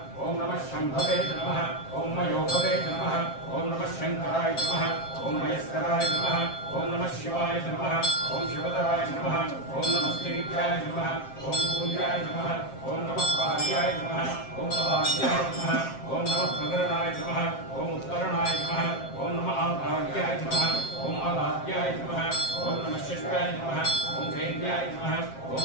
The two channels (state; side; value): late; right; 7.6 ms